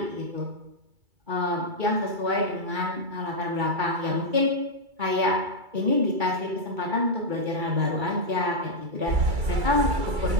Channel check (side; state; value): left; late; 2.3 ms